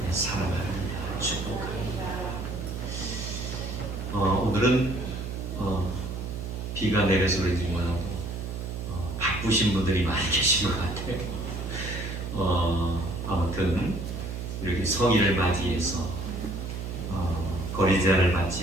사랑합니다. 축복합니다. 오늘은 비가 내려서 그런지 몰라도 바쁘신 분들이 많이 계신 것 같아요. 아무튼 이렇게 성인을 맞이해서 거리 제한을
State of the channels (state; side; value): noise; right; hum, 6 dB below the sound